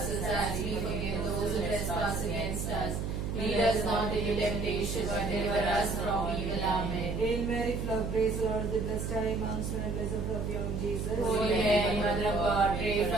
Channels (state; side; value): noise; right; hum, 3 dB below the sound